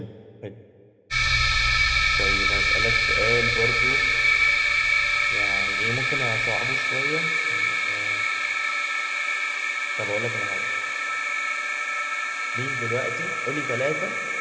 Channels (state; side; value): identical; both; correlation 1.00